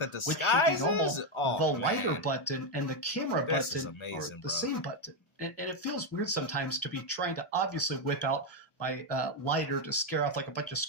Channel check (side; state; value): right; late; 1.4 ms